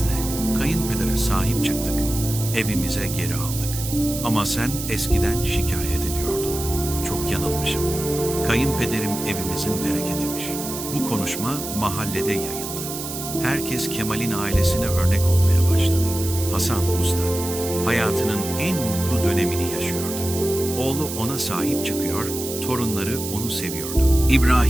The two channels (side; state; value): right; noise; hiss, 7 dB below the sound